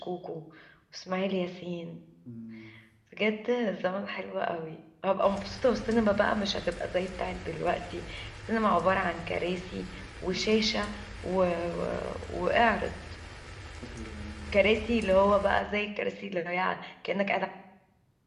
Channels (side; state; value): both; identical; correlation 1.00